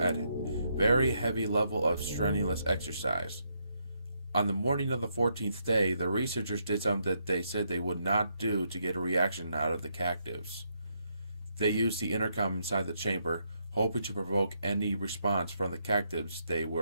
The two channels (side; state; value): both; inverted; correlation -0.77